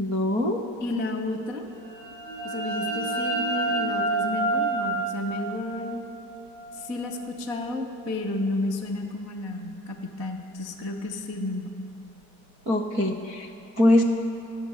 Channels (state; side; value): late; left; 4.1 ms